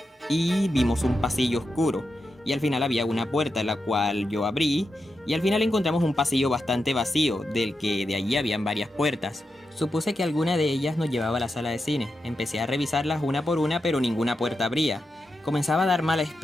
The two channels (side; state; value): both; normal; correlation 0.88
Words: y vimos un pasillo oscuro, y al final había una puerta la cual yo abrí, y al final encontramos un pasillo bastante vacío, del que de allí habían varias puertas. Supuse que alguna de ellas nos llevaba a la sala de cine. Empecé a revisarlas una por una, pero ninguna puerta abría. Comenzaba a dar mala